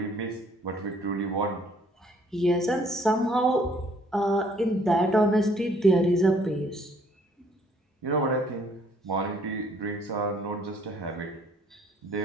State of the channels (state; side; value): normal; both; correlation 0.62